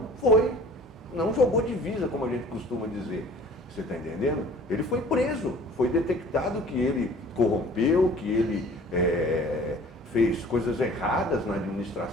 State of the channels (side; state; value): both; normal; correlation 0.49